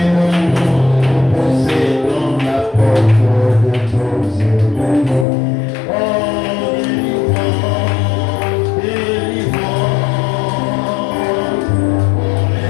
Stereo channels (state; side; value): drops out; right; at 5.2 s